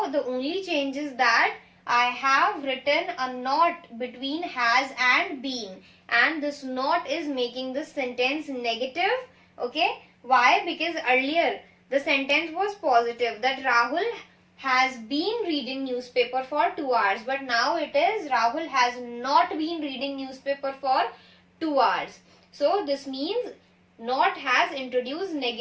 the only change is that I have written a not between has and been, and this not is making the sentence negative. Okay, why? Because earlier the sentence was positive, that Rahul has been reading newspaper for 2 hours, but now it is Rahul has not been reading newspaper for 2 hours. So this means not has introduced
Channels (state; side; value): identical; both; correlation 1.00